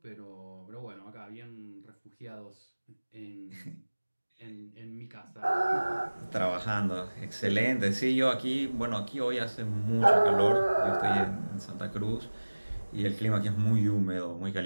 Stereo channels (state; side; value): inverted; both; correlation -1.00